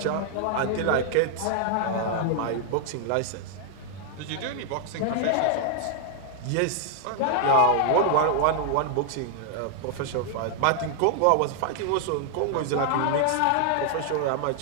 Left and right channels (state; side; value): different; both; correlation 0.00